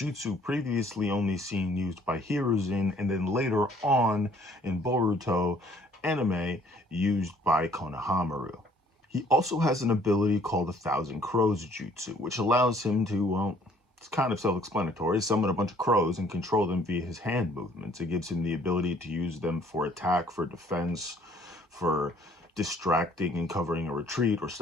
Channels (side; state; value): both; normal; correlation 0.60